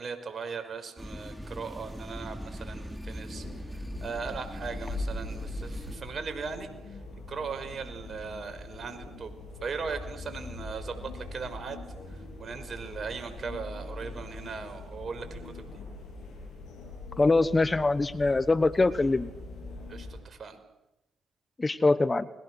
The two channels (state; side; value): normal; both; correlation 0.92